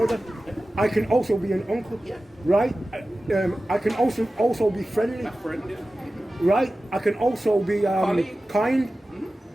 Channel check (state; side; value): normal; both; correlation 0.95